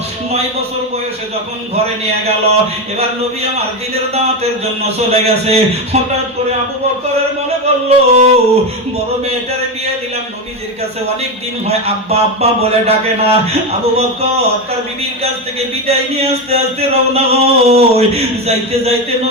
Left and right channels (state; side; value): normal; both; correlation 0.14